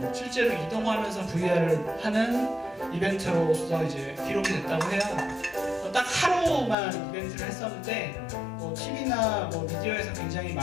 실제로 이동하면서 VR을 하는 이벤트로서 이제 기록이 됐다고 해요. 딱 하루만 이벤트를 했었는데, TV나 미디어에서 굉장히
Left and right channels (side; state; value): right; drops out; at 6.8 s